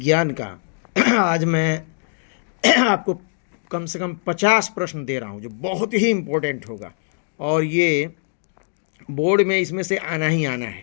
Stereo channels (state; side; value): silent; right; digital silence